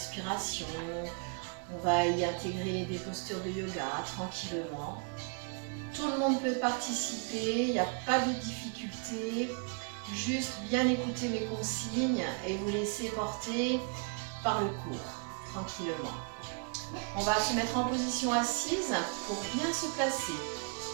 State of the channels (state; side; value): quieter; left; 37.0 dB